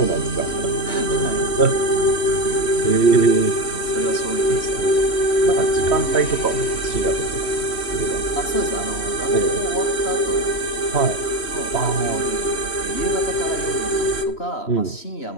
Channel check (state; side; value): late; right; 3.1 ms